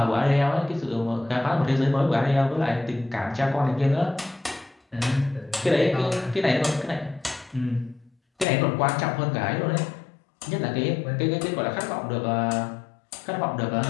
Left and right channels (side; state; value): right; drops out; at 8.5 s